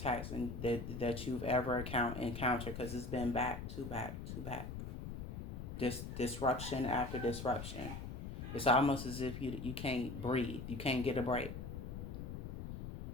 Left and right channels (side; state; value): left; noise; rumble, 7 dB below the sound